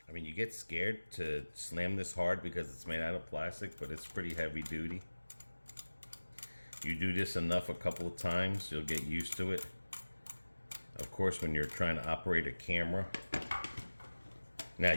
I mean, you get scared to slam this hard because it's made out of plastic, but it's pretty heavy duty. You do this enough a couple of times, you'll get used to it. Of course, when you're trying to operate a camera. Now,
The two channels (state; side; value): inverted; both; correlation -1.00